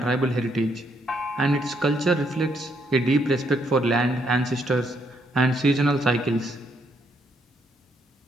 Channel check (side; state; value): both; normal; correlation 0.74